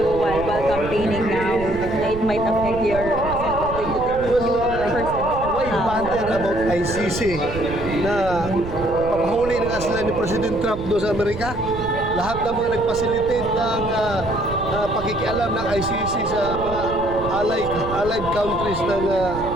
while campaigning now na it might affect your Why bother about ICC na papahuli na nga sila ni President Trump doon sa Amerika? Lahat ng mga nag-facilitate ng pakikialam ng ICC sa mga allied countries ng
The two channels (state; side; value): noise; right; rumble, 10 dB below the sound